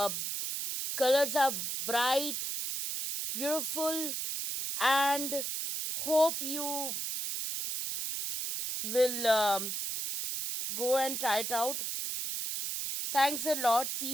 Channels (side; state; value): right; noise; hiss, 3 dB below the sound